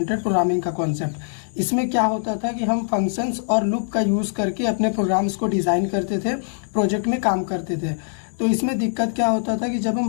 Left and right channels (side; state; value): right; silent; digital silence